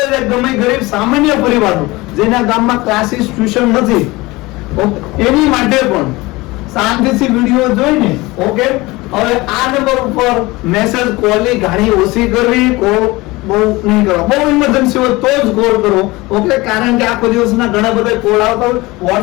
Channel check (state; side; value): quieter; right; 21.6 dB